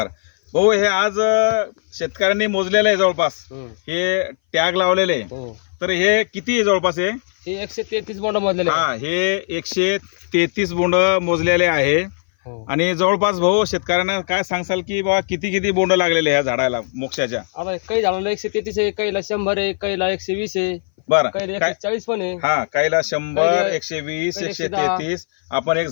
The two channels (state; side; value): silent; right; 60 dB below the other